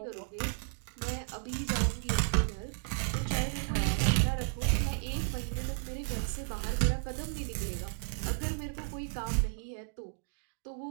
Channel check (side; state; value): left; silent; digital silence